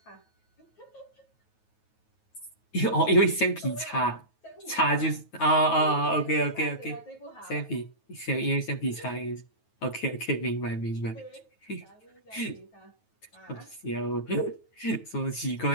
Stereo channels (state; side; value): late; right; 9.3 ms